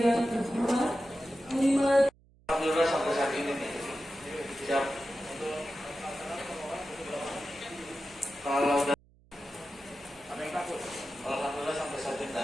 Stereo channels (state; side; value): noise; right; hum, 29 dB below the sound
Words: terhormat Panglima. Alhamdulillah sampai saat ini nih siap. Kalau udah ada yang takut, alhamdulillah sampai saat ini